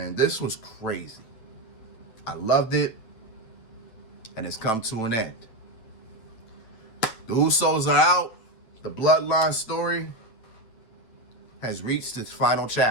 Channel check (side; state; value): right; late; 8.8 ms